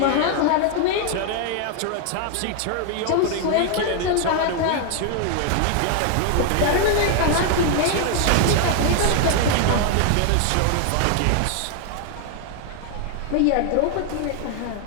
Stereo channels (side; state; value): both; different; correlation 0.00